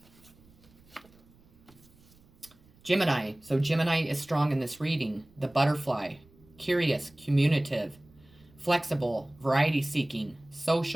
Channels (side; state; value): right; noise; rumble, 28 dB below the sound